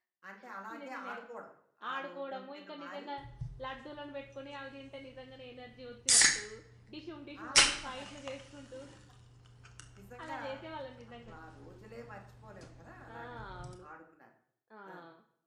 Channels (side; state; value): both; identical; correlation 1.00